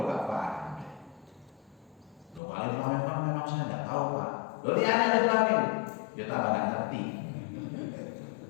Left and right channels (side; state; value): right; drops out; at 2.4 s